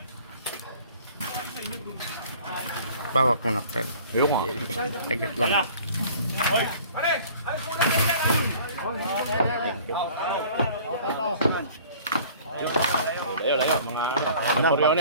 Bawak mo na, Fred. Yung nga. Agad lang. Ano,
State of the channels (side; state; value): both; inverted; correlation -0.49